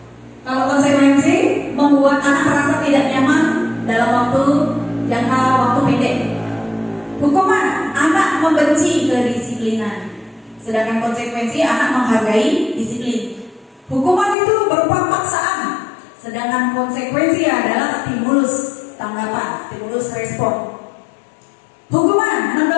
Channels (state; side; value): drops out; right; at 14.4 s